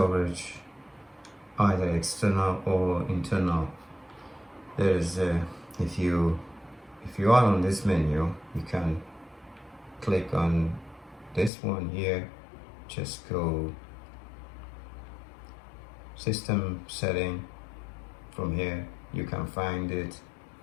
either external or internal. There's if you are on this menu, you can click on this one here. Just go system setting. From here you can find it,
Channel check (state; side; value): drops out; right; at 11.5 s